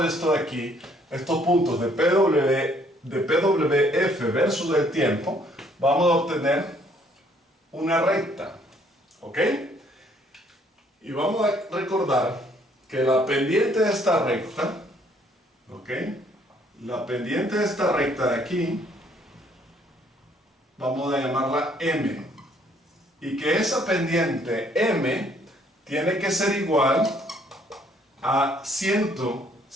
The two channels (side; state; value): both; normal; correlation 0.64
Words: esto de aquí, estos puntos de PWF versus el tiempo, vamos a obtener una recta, ¿ok? Y vamos a recordar que la pendiente de esta recta, ¿ok? La pendiente de esta recta de aquí, vamos a llamarla M. Y que esa pendiente M tiene que ser igual a